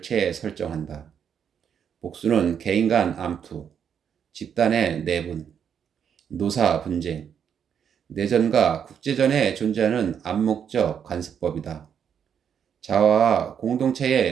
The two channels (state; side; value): quieter; left; 8.0 dB